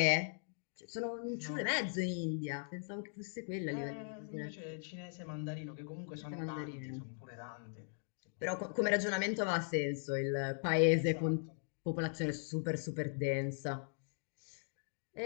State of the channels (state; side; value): silent; right; digital silence